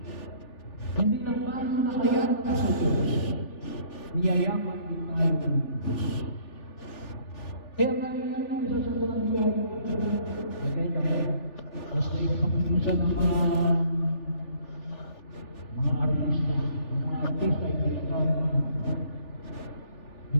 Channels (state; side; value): late; right; 3.4 ms